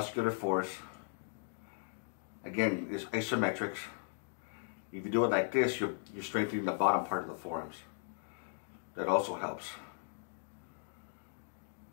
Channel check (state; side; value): silent; right; digital silence